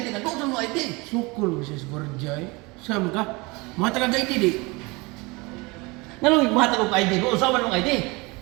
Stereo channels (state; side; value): quieter; left; 25.6 dB